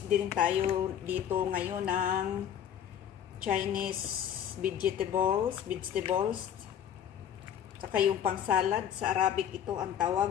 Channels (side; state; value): right; quieter; 9.6 dB